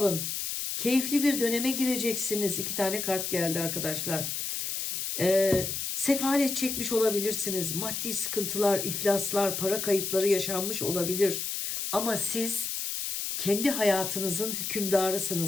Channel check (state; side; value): noise; left; hiss, 3 dB below the sound